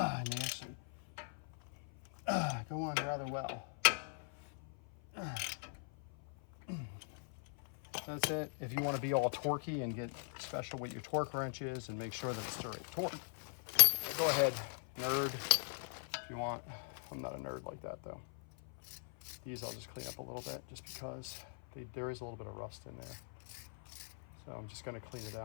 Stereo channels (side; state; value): right; silent; 51 dB below the other